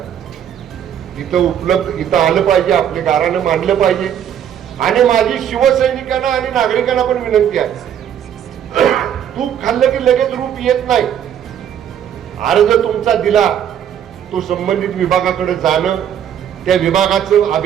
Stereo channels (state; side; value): quieter; left; 9.5 dB